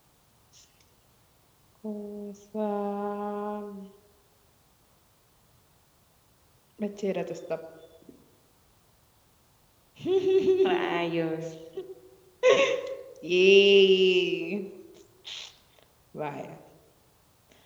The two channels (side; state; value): both; identical; correlation 1.00